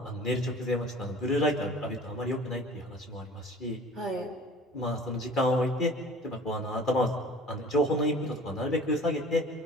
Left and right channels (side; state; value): both; normal; correlation 0.45